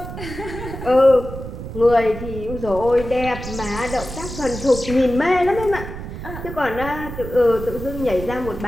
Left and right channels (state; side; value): noise; right; rumble, 9 dB below the sound